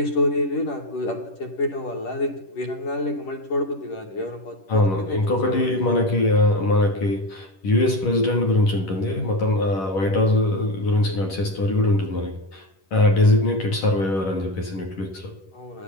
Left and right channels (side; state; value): right; late; 10 ms